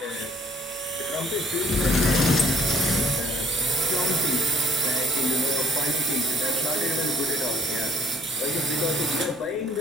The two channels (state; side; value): normal; both; correlation 0.60